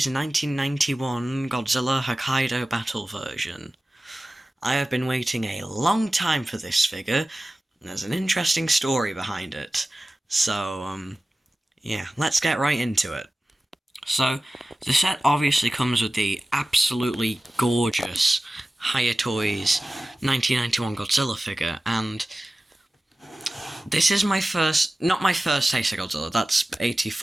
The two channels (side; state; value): both; normal; correlation 0.96